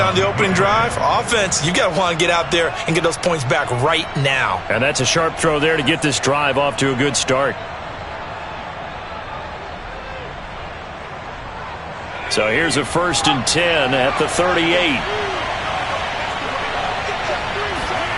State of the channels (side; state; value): both; identical; correlation 1.00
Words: on the opening drive. Offense, you got to want to get out there and get those points back right now. And that's a sharp throw there to get this drive off to a good start. So here's a 1st and 10 at the 38.